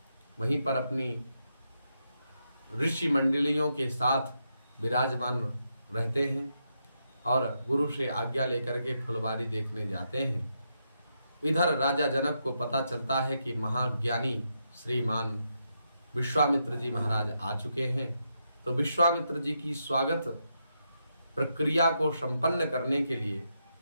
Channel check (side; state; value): both; inverted; correlation -0.82